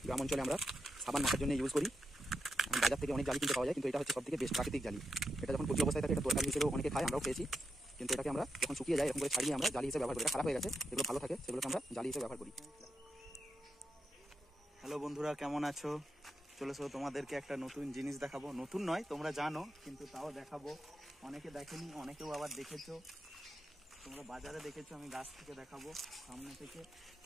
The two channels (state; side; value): normal; both; correlation 0.86